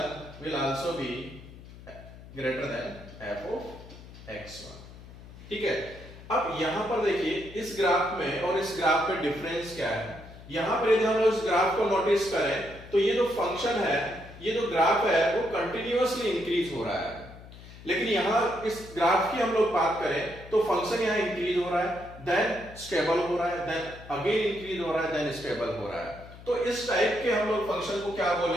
will also be greater than f of x1। ठीक है, अब यहां पर देखिए इस ग्राफ में और इस ग्राफ में डिफरेंस क्या है। यहां पर यदि हम लोग इस ग्राफ को नोटिस करें तो ये जो फंक्शन है, ये जो ग्राफ है वो कंटिन्यूअसली इंक्रीज हो रहा है। लेकिन यहां इस ग्राफ की हम लोग बात करें तो फंक्शन यहां इंक्रीज हो रहा है, देन स्टेबल हो रहा है, देन अगेन इंक्रीज हो रहा है, देन स्टेबल हो रहा है। तो इस टाइप के हम लोग फंक्शन को क्या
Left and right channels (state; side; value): noise; left; hum, 17 dB below the sound